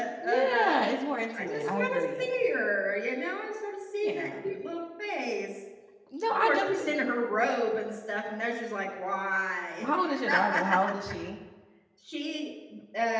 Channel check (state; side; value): identical; both; correlation 1.00